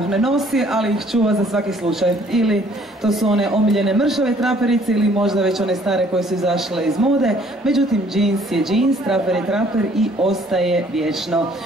ne nosi, ali ih čuva za svaki slučaj. Ili to su one omiljene mršave traperice ili možda već one stare koje su izašle iz mode. Međutim, džins je džins, traper je traper i ostaje vječno.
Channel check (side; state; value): both; normal; correlation 0.60